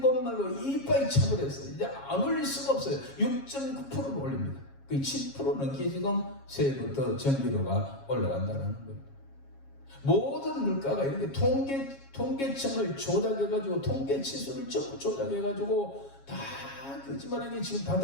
이빨이 차버렸어요. 이제 안 올릴 수가 없어요. 6.9%를 올립니다. 그 7% 넘게 지금 새해부터 전기료가 올라간다는 거예요. 모든 물가가 이렇게 통계청을 조작해가지고 통계치수를 전부 조작해가지고 다 거짓말하게 지금 다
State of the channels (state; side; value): late; right; 7.3 ms